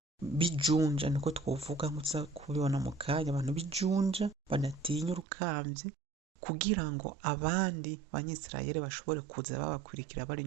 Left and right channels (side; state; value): left; drops out; at 5.2 s